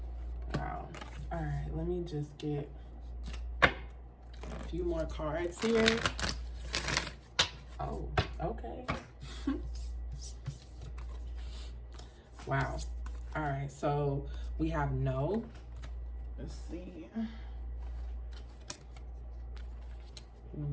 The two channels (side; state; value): both; identical; correlation 1.00